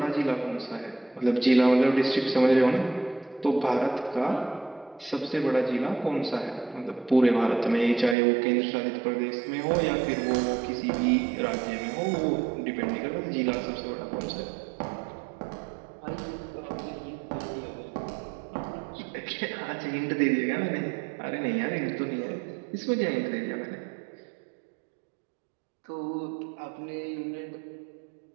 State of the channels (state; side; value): drops out; left; at 8.2 s